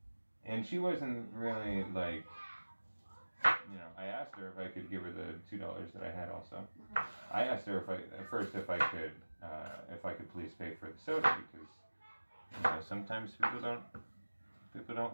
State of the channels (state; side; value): inverted; both; correlation -1.00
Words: And she wasn't really like, you know, I asked her if I could give her the $2 that I had also. I asked her if I could please pay for the soda, because, you know, sometimes people don't